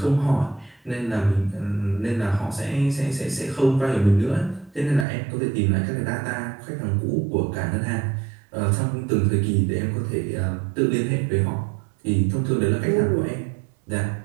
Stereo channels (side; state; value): left; drops out; at 5.1 s